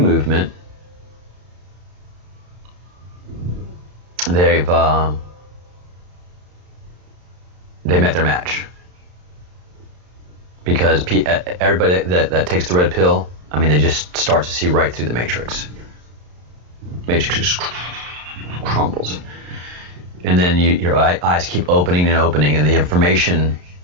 they met their match. Because everybody that takes the red pill, I mean, they just start to see right through the matrix. Matrix just crumbles. And then your eyes keep opening and opening, and the information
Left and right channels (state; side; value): late; left; 34 ms